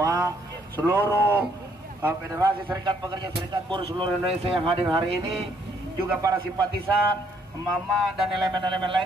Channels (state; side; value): normal; both; correlation 0.68